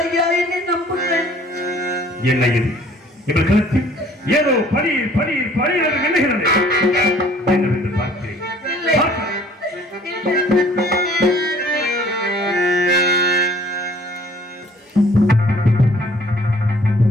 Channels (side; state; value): both; normal; correlation 0.55